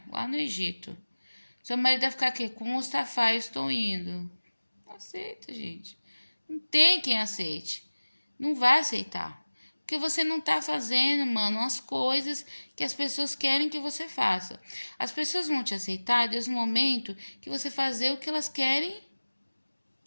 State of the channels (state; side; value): inverted; both; correlation -1.00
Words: lá no Egito. Seu marido vai ficar aqui, com o Mustafa, eu estou indo. Não aceita, gente. Não tem quem aceite. Não vai aceitar. Porque você não tá fazendo, mano, as coisas que as pessoas querem que você faça. As pessoas vão te aceitar desde o momento que você fazer o que elas querem